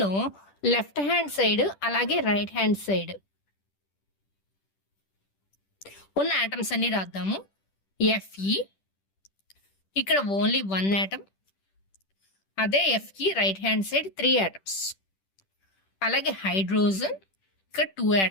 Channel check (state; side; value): late; right; 10 ms